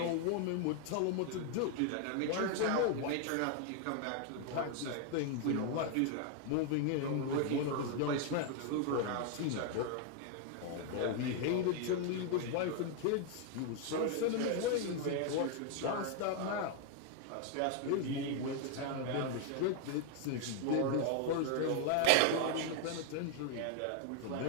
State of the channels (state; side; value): different; both; correlation 0.00